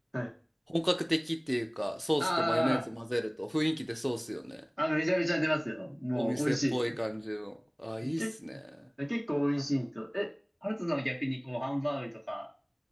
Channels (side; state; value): both; identical; correlation 1.00